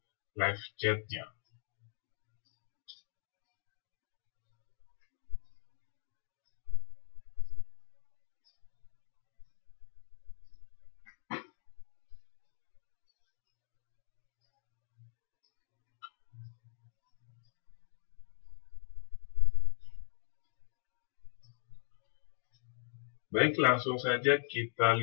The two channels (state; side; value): silent; right; digital silence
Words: live chat-nya. Baik, langsung saja kita